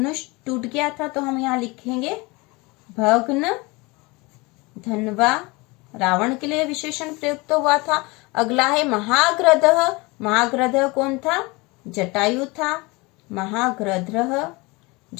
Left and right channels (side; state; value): right; quieter; 25.0 dB